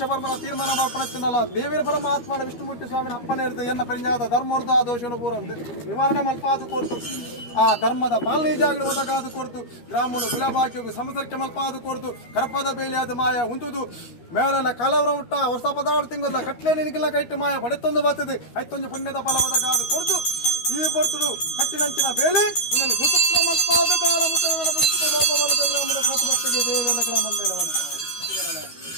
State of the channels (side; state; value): right; late; 13 ms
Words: ಬರ್ಮನ ತೀರ್ಮಾನ ಮಾಡ್ಪಣತ್ತಿನಲ್ಲ ದೇವರ ಪರಮಾತ್ಮನ ವಿಷ್ಣುಮೂರ್ತಿ ಸ್ವಾಮಿನ ಅಪ್ಪನೇ ಇರ್ತದೆ ಎನ್ನ ಪರಿಜಾದ ಧರ್ಮೋರ್ಧ ದೋಷವನ್ನು ಪೂರಂದು ನಿವಾರಣೆ ಮಲ್ಪಾದು ಕೊಡ್ತು ಆ ಧರ್ಮದ ಪಾಲನೆ ಜಾಗಗಳು ಒದಗಾದು ಕೊಡ್ತು ಗ್ರಾಮಗಳು ಗುಲಾಬಾಕಿಗೂ ಸಮಸರ್ಕೆ ಮಲ್ಪಾದು ಕೊಡ್ತು ಕರ್ಪದ ಬೇಲಿಯಾದ ಮಾಯ ಉಂಟುದು ಮೇಲೆಲ್ಲ ಕಾಲವರ ಮುಟ್ಟ ಹೊಸ ಪದಾರ್ಥ ತಿಂಗಲ್ಲ ಕಟ್ಲೆ ನಿನಗಿಲ್ಲ ಕೈಟ್ಟು ಮಾಯ ಬಡೆತ್ತೊಂದು ಬರ್ತದೆ ಐತೊಂದು ಪುಣ್ಯದ ಫಲ ಒದಗಾದು ಕೊಡ್ತು ಈ ಬರ್ತಡು ಕಟ್ಟಿನಂಚಿನ ಬೇಲಿ ಇನ್ನೊಂದು ಸುಸೂತ್ರ ಮಲ್ಪಾದು ಕಾಲ ಮುಟ್ಟ ಲೋಪಬಲದ ಗ್ರಾಮದ ಪ್ರತಿಭಕ್ತಿಗೆ ದೇವರ ಗ್ರಾಮಂದೆಲ್ಲವನ್ನ